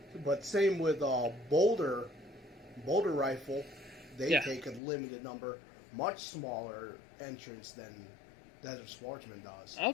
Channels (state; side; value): drops out; right; at 4.8 s